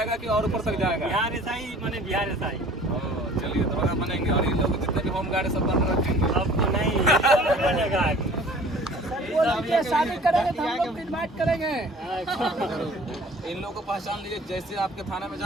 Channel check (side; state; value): both; normal; correlation 0.48